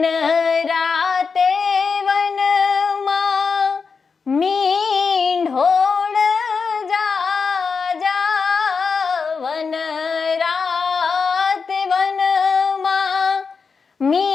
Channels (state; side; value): quieter; right; 5.2 dB